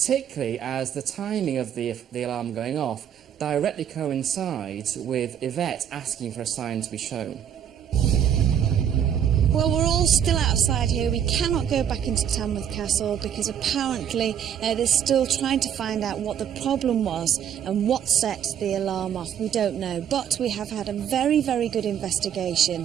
as the timing of the alarm going off directly coincides with Yvette asking for a sign to be shown. Well, we're all still outside here. We cannot go back into Tamworth Castle because apparently they're still trying to find out what the problem was and what set the alarm off. We don't know, but we have had a very, very good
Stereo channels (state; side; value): quieter; left; 9.1 dB